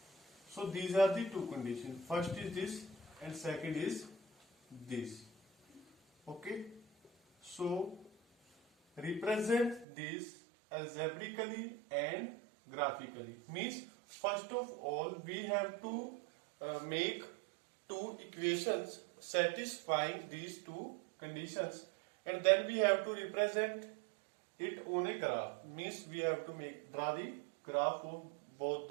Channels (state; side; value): drops out; left; at 9.9 s